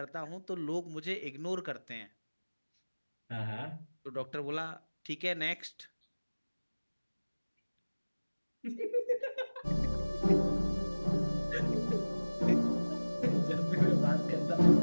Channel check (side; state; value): both; inverted; correlation -1.00